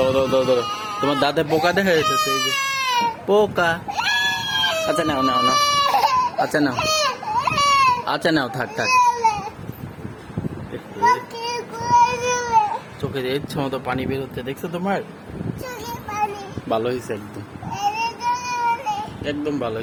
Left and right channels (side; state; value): both; identical; correlation 1.00